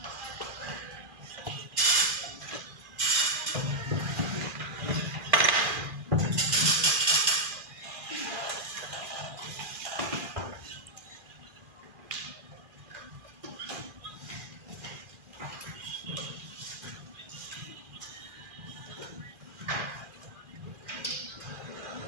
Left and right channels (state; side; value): late; left; 2.4 ms